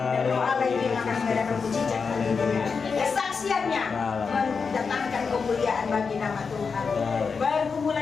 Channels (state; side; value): quieter; right; 5.3 dB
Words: Roh Allah itu yang akan mengadakan mujizat bagi dia. Kesaksiannya mendatangkan kemuliaan bagi nama Tuhan.